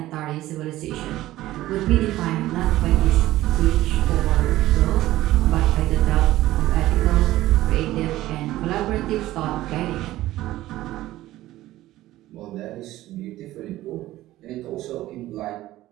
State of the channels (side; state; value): left; quieter; 15.6 dB